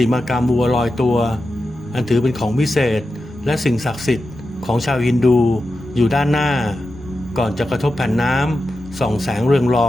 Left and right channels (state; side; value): normal; both; correlation 0.91